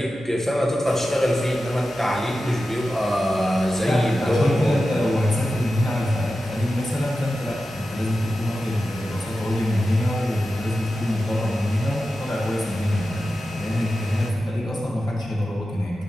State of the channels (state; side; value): noise; right; hum, 25 dB below the sound